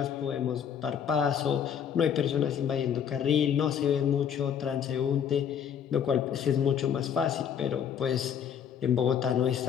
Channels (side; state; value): right; quieter; 8.3 dB